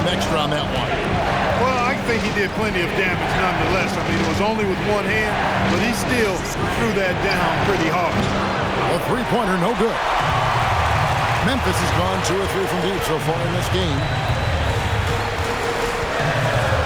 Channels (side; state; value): both; identical; correlation 1.00